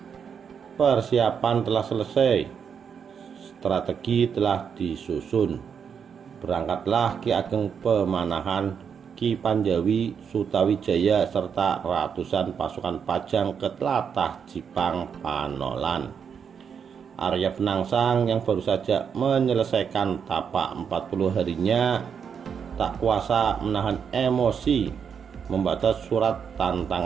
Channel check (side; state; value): left; quieter; 7.0 dB